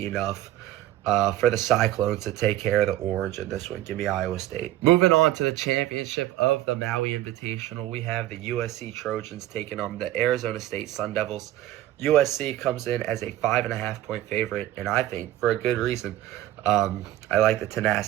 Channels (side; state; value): left; quieter; 14.0 dB